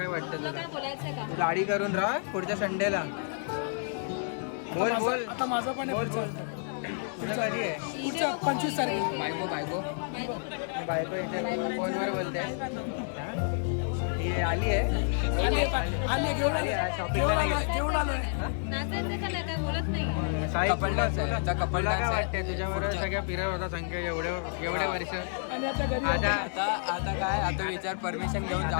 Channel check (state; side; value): silent; right; digital silence